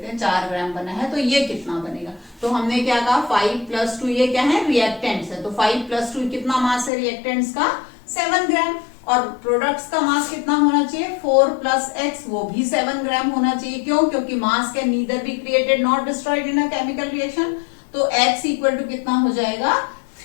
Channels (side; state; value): right; drops out; at 6.9 s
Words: हैं, 4 ग्राम बना है तो ये कितना बनेगा। तो हमने क्या कहा 5 + 2, ये क्या है? रिएक्टेंट्स है। तो 5 + 2 कितना मास है रिएक्टेंट्स का? 7 ग्राम। और प्रोडक्ट्स का मास कितना होना चाहिए? 4 + x, वो भी 7 ग्राम होना चाहिए। क्यों? क्योंकि मास can neither be created not destroyed in a chemical reaction. तो x = कितना हो जाएगा?